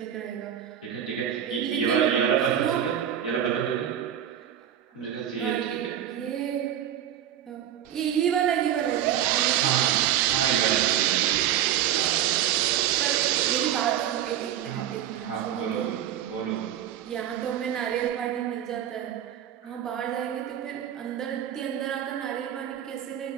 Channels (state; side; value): quieter; left; 10.5 dB